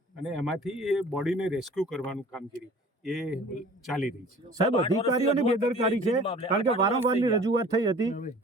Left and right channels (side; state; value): both; normal; correlation 0.47